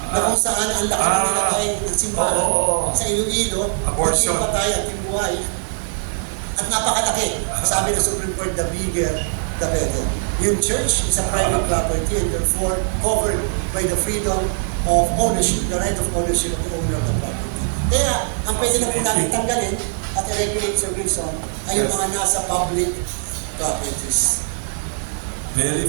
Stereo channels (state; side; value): silent; left; digital silence